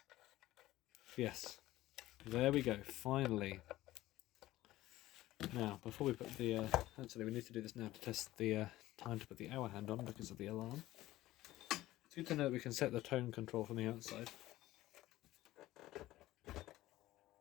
Yes. There we go. Finally. Now, before we put the... actually, we need to do this now to test the time to put the hour hand on because of the alarm. It's good to know that we can set the tone control from the outside.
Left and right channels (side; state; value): right; quieter; 16.2 dB